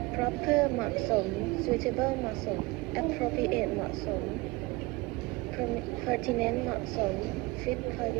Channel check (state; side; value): quieter; left; 22.3 dB